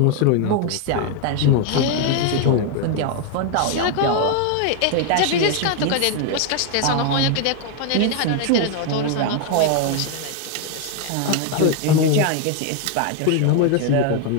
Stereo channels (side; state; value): both; different; correlation 0.01